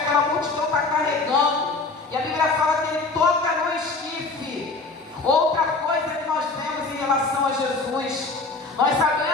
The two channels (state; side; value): quieter; right; 3.7 dB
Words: multidão está carregando. E a Bíblia fala que Ele toca no esquife. Outra coisa que nós vemos em relação a Jesus, nós